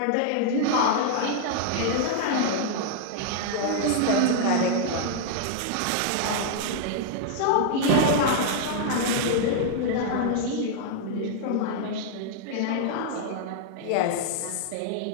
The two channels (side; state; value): both; different; correlation -0.01